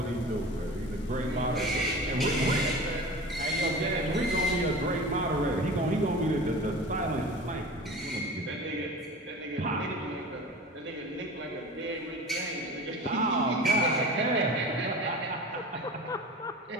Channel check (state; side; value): normal; both; correlation 0.35